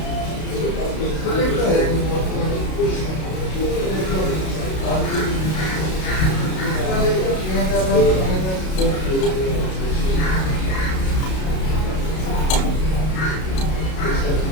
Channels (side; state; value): right; late; 32 ms